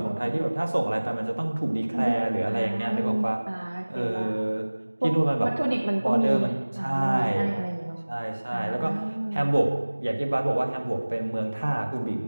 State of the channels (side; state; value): both; inverted; correlation -1.00